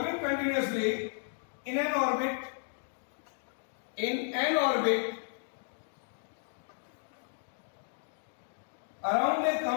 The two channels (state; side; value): silent; right; 55 dB below the other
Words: continuously in an orbit around a